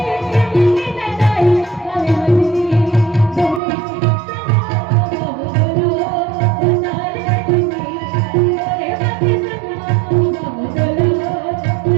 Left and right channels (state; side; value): drops out; left; at 3.6 s